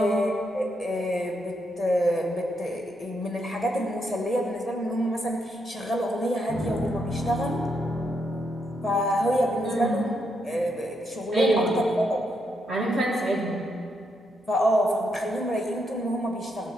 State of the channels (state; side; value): normal; both; correlation 0.79